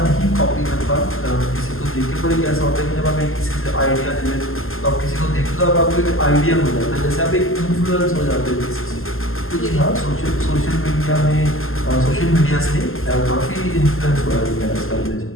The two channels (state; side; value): late; right; 0.61 ms